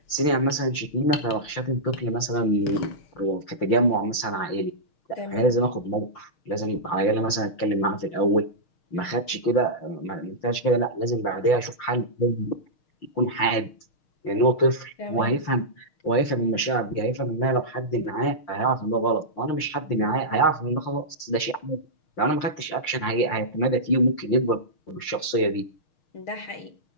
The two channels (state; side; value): late; right; 6.4 ms